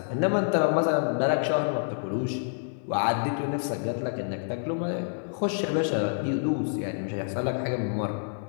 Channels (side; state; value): right; silent; digital silence